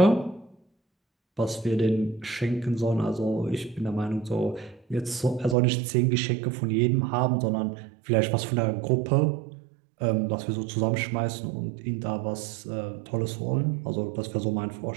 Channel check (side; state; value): left; drops out; at 5.6 s